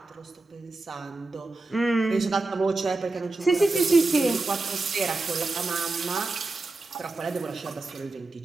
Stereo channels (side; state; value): left; quieter; 3.3 dB